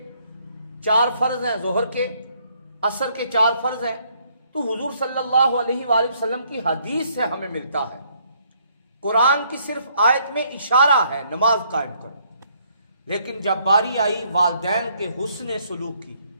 4 فرض ہیں ظہر کے، عصر کے 4 فرض ہیں، تو حضور صلی اللہ علیہ وآلہ وسلم کی حدیث سے ہمیں ملتا ہے۔ قرآن کی صرف آیت میں اشارہ ہے نماز قائم کرو، لیکن جب باری آئی والدین کے حسن سلوک کی،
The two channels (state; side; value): inverted; both; correlation -0.68